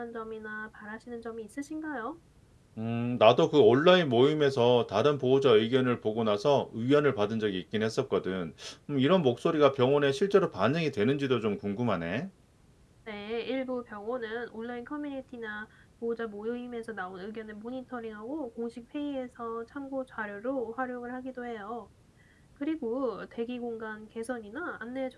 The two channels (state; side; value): identical; both; correlation 1.00